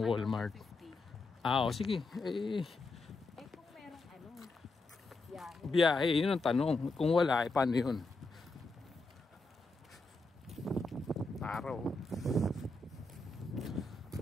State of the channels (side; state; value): right; quieter; 3.2 dB